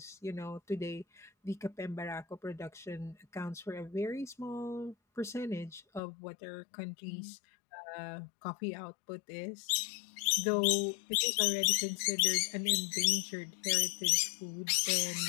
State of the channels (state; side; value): drops out; right; at 6.0 s